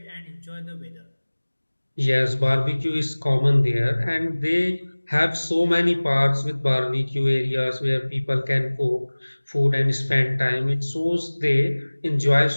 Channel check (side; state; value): both; inverted; correlation -1.00